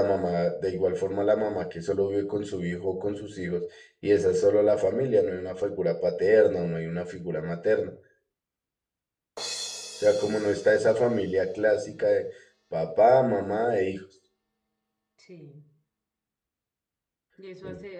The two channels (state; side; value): identical; both; correlation 1.00